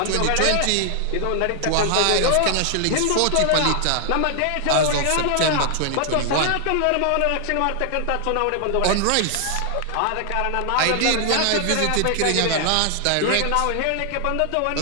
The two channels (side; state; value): both; different; correlation 0.00